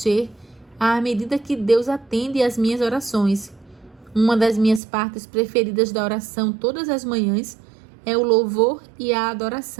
à medida que Deus atende às minhas orações. Uma das minhas partes preferidas da oração todas as manhãs é o louvor e a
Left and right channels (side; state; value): left; drops out; at 4.8 s